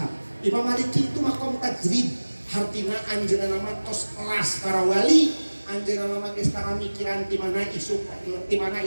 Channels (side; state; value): both; inverted; correlation -1.00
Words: Imam Maliki itu makom tajrid, hartina anjeunna mah tos kelas para wali. Anjeunna mah geus tara mikiran ti mana